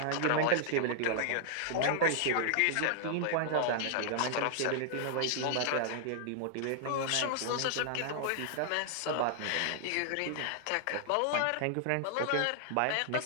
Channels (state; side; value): different; both; correlation -0.01